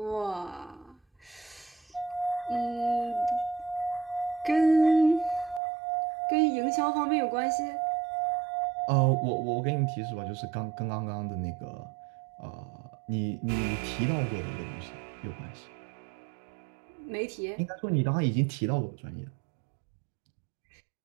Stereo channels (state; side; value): drops out; left; at 5.6 s